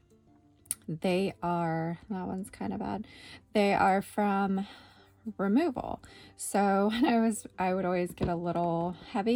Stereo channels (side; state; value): both; identical; correlation 1.00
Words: That one's kind of bad. They are from removal. So when I would always get a little